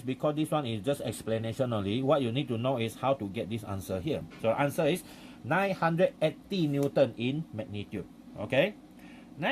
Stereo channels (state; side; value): identical; both; correlation 1.00